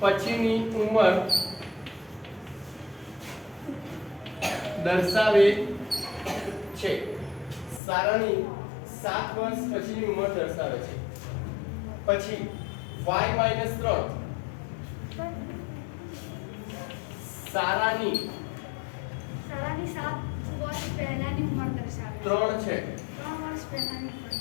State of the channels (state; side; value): drops out; right; at 7.8 s